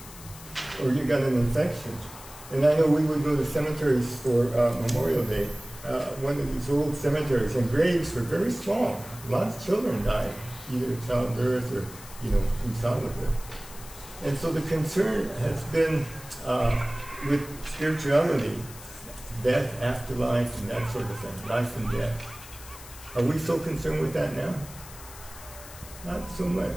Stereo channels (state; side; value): noise; left; hiss, 17 dB below the sound